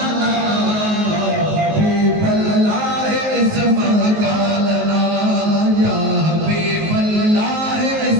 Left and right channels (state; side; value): late; left; 19 ms